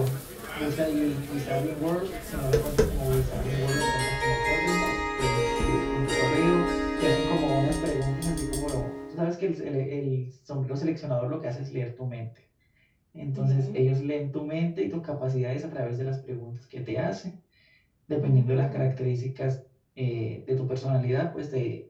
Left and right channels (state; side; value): identical; both; correlation 1.00